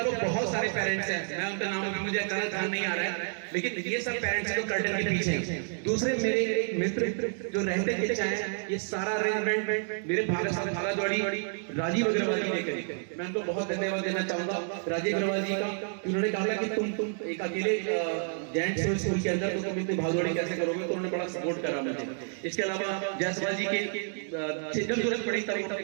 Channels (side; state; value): left; silent; 56 dB below the other